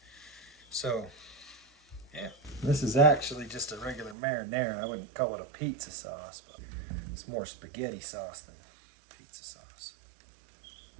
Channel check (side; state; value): left; drops out; at 4.2 s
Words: So, yeah. This is actually just a regular marinara. I wouldn't call it a pizza sauce, but it's more spaghetti sauce than pizza sauce.